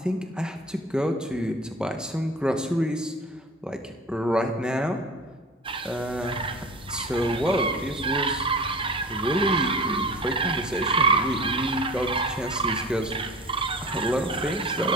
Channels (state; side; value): normal; both; correlation 0.38